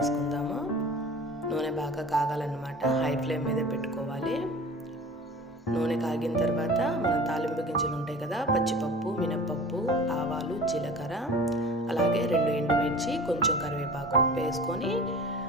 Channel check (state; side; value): normal; both; correlation 0.40